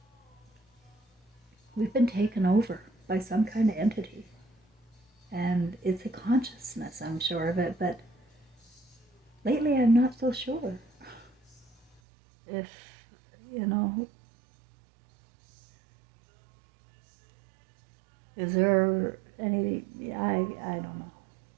We've been taken over by some kind of entity. And it's a consciousness, I'm sure of it, but lately I'm not so sure if, you know, is there any, I don't know.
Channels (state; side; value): drops out; left; at 12.0 s